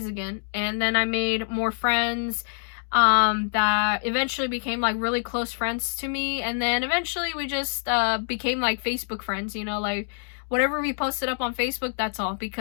again, and then I made more friends that eventually became, like, really close friends to me. And then eventually we just became, like, Facebook friends, you know, like, whatever we posted up on Facebook, that's all,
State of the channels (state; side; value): silent; right; 61 dB below the other